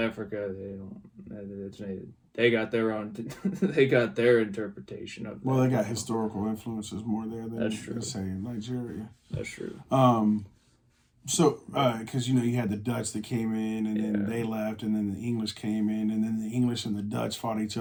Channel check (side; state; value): both; identical; correlation 1.00